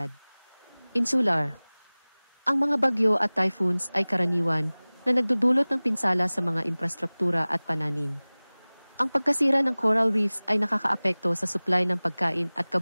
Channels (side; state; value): both; inverted; correlation -1.00